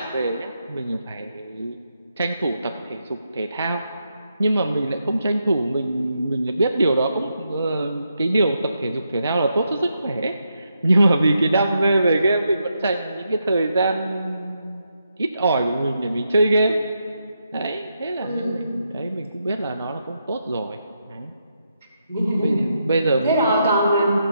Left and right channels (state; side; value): inverted; both; correlation -0.82